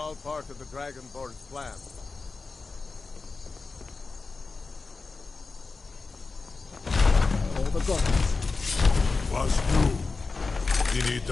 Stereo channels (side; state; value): right; quieter; 4.1 dB